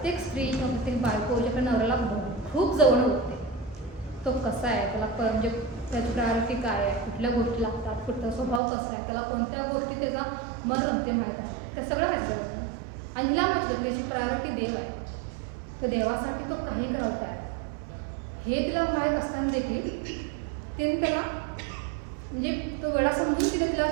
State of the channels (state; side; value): drops out; left; at 8.6 s